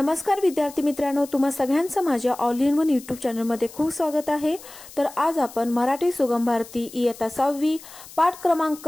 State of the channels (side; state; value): left; noise; hiss, 18 dB below the sound